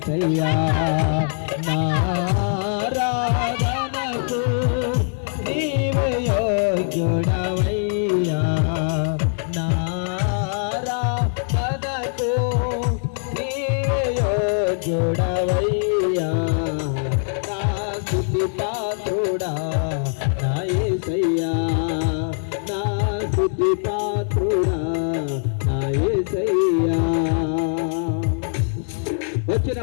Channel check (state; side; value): silent; right; 60 dB below the other